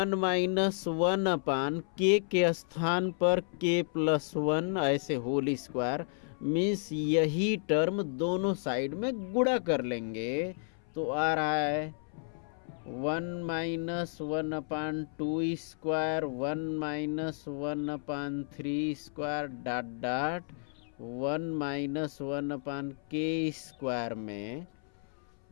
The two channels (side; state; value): right; silent; 56 dB below the other